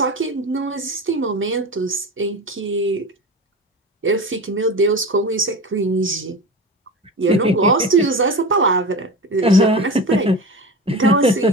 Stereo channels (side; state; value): both; normal; correlation 0.28